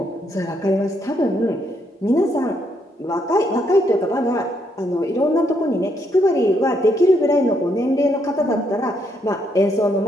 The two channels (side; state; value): both; normal; correlation 0.75